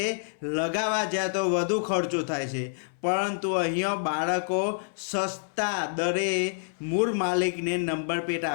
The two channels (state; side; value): silent; right; 57 dB below the other